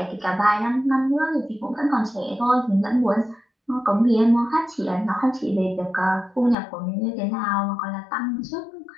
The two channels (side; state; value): right; drops out; at 6.6 s